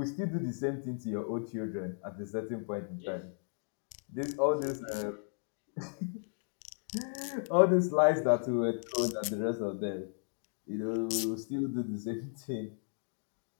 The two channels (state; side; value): silent; right; 55 dB below the other